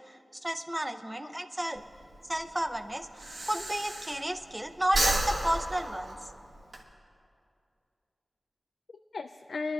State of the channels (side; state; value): both; normal; correlation 0.96